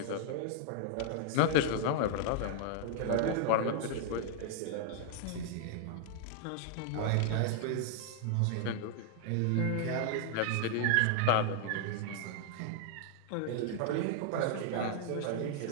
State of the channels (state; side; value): different; both; correlation 0.00